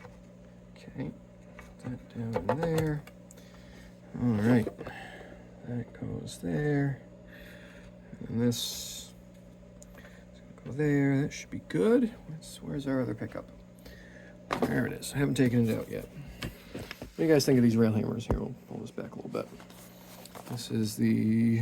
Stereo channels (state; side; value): identical; both; correlation 1.00